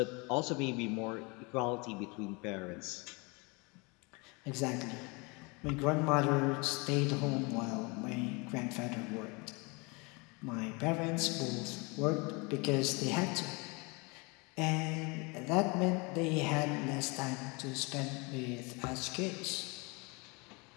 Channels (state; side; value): quieter; right; 28.7 dB